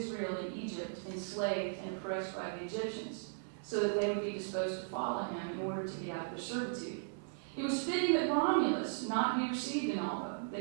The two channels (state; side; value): silent; left; 53 dB below the other